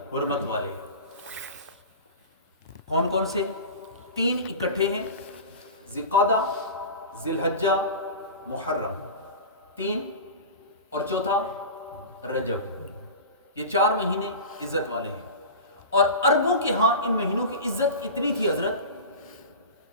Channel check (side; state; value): both; inverted; correlation -0.31